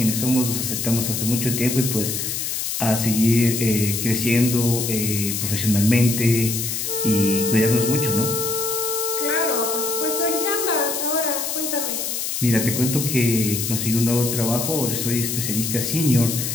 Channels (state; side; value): noise; left; hiss, 2 dB below the sound